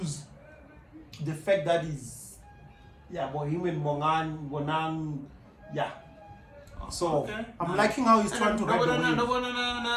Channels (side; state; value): both; identical; correlation 1.00